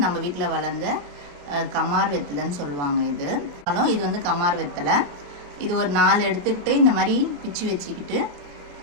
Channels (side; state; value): left; late; 28 ms